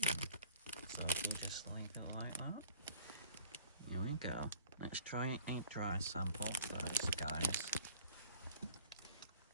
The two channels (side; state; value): both; inverted; correlation -0.50